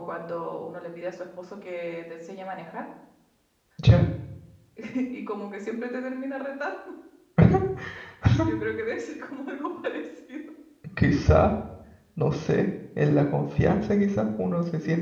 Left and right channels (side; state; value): both; identical; correlation 1.00